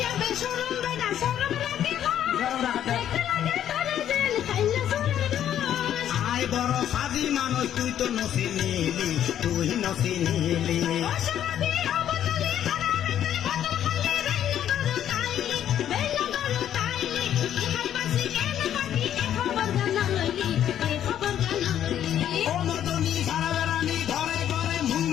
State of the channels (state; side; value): quieter; right; 10.6 dB